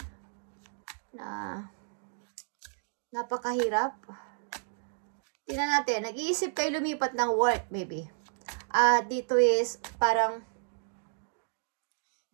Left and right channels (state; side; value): silent; left; digital silence